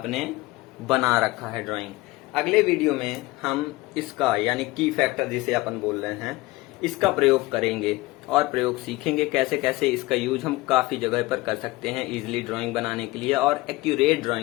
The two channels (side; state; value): right; quieter; 20.4 dB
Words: बना रखा है ड्राइंग। अगले वीडियो में हम इसका यानी की फैक्टर जिसे अपन बोल रहे हैं, इसका प्रयोग करेंगे और प्रयोग सीखेंगे कैसे कैसे इसका यूज हम काफी जगह पर कर सकते हैं इजीली ड्राइंग बनाने के लिए और एक्यूरेट